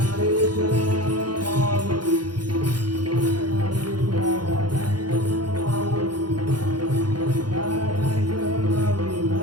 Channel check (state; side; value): late; left; 0.71 ms